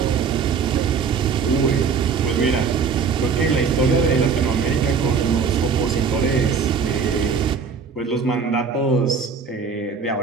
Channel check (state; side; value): quieter; left; 5.8 dB